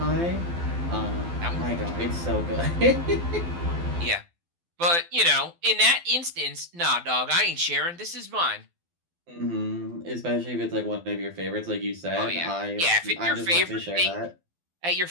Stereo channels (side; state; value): left; late; 12 ms